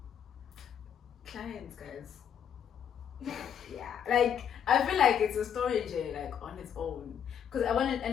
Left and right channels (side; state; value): right; quieter; 8.6 dB